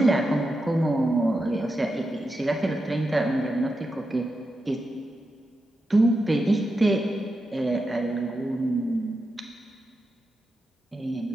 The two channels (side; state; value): both; normal; correlation 0.88